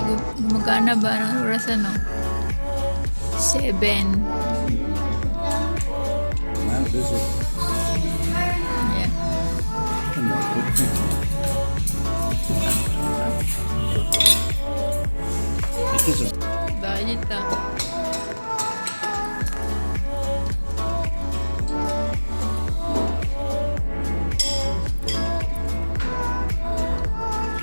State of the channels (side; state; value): both; inverted; correlation -1.00